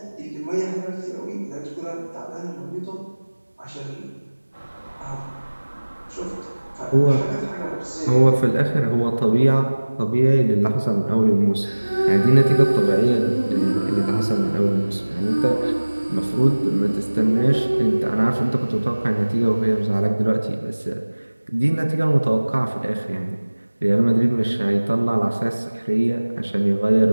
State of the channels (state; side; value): inverted; both; correlation -1.00